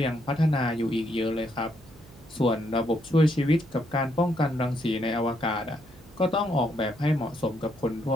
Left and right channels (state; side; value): noise; right; hum, 23 dB below the sound